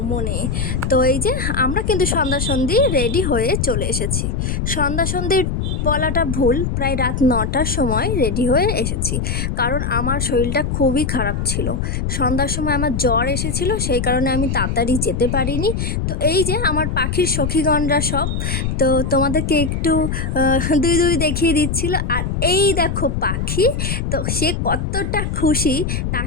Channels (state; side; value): noise; left; rumble, 1 dB below the sound